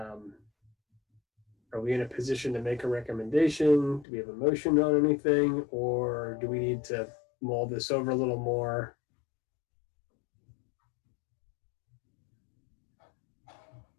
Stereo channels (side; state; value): right; drops out; at 4.0 s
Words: we in a position to make a recommendation? Do we have a motion on anything? Or do we need to mull this over a little more?